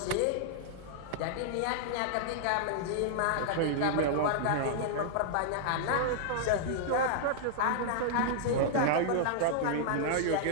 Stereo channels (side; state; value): both; different; correlation -0.01